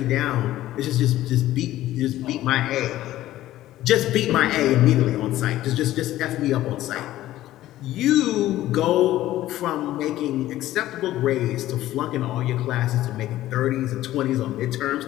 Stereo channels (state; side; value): quieter; right; 14.6 dB